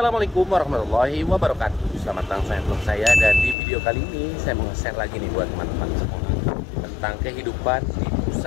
warahmatullahi wabarakatuh. Selamat datang saya, dan di video kali ini saya mau share lagi nih buat teman-teman semua tentang kehidupan di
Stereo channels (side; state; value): right; drops out; at 3.6 s